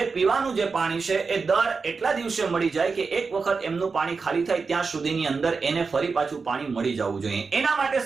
પીવાનું જે પાણી છે એ દર એટલા દિવસે મળી જાય કે એક વખત એમનું પાણી ખાલી થાય ત્યાં સુધીની અંદર એને ફરી પાછું પાણી મળી જવું જોઈએ. એના માટે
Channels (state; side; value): quieter; left; 4.7 dB